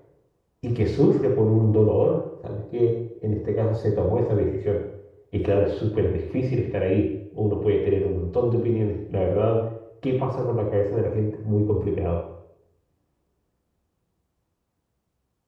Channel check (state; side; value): identical; both; correlation 1.00